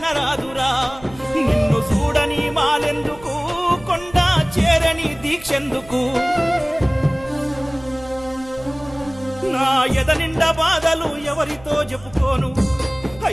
నిన్ను చూడని మాలెందుకు కొండ చేరని దీక్షెందుకు నా ఎద నిండా బాధలు ఎవరితో చెప్పుకోను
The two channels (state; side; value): noise; right; hum, 21 dB below the sound